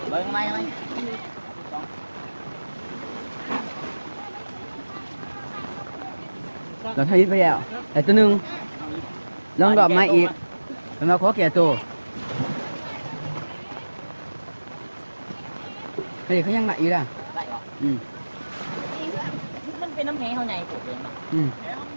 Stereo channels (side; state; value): both; inverted; correlation -1.00